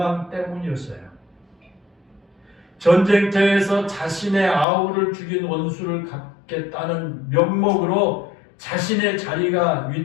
때문이었어요. 전쟁터에서 자신의 아우를 죽인 원수를 갚겠다는 명목으로 자신의 자리가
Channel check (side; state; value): right; drops out; at 4.7 s